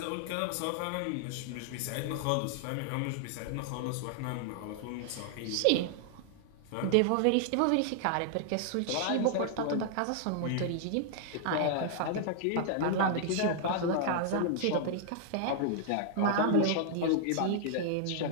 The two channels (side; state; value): both; different; correlation -0.01